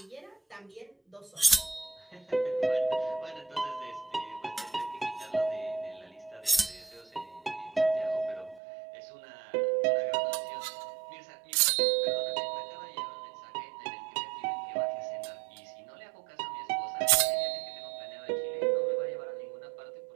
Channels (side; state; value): left; drops out; at 8.6 s